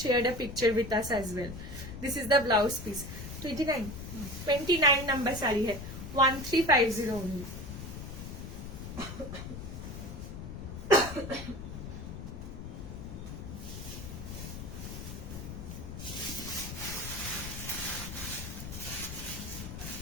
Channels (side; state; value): left; noise; rumble, 8 dB below the sound